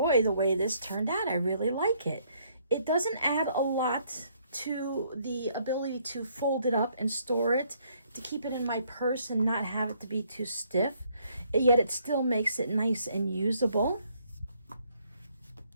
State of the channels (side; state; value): both; inverted; correlation -0.67